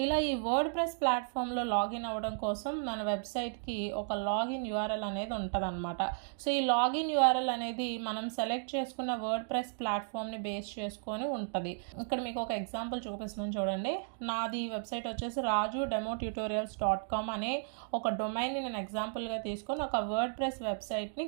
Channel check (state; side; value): silent; left; digital silence